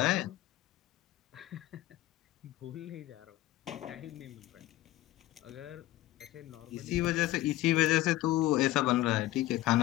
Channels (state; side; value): quieter; right; 16.1 dB